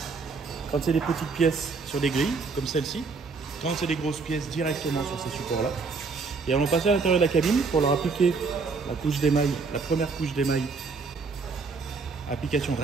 Quand c'est des petites pièces sur des grilles comme celle-ci, quand c'est des grosses pièces directement sur ces supports-là. Et on va passer à l'intérieur de la cabine pour leur appliquer la couche d'émail, la première couche d'émail, application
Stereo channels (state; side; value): quieter; left; 4.5 dB